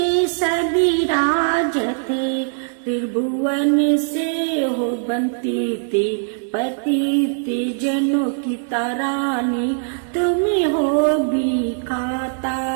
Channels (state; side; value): silent; left; 65 dB below the other